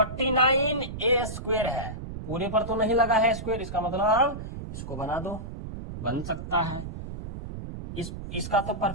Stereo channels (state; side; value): noise; right; rumble, 9 dB below the sound